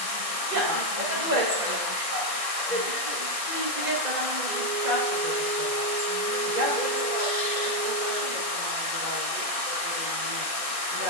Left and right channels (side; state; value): left; late; 1.6 ms